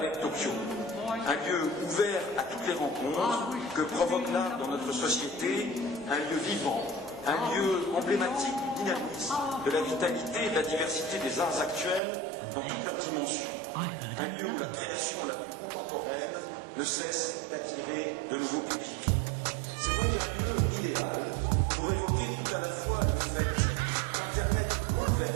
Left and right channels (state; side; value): drops out; left; at 12.0 s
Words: de Tokyo, un lieu ouvert à toutes les rencontres que provoque l'art dans notre société, un lieu vivant, un lieu emblématique du dynamisme, de la vitalité et de la diversité des arts actuels dans toutes leurs dimensions. Un lieu où la création la plus contemporaine ne cesse d'attirer de nouveaux publics. C'est donc un lieu idéal pour évoquer tout à la fois le fait qu'Internet